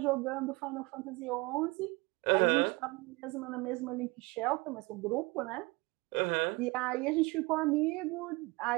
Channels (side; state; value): left; quieter; 24.7 dB